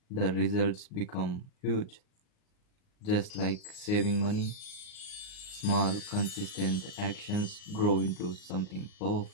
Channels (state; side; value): late; right; 38 ms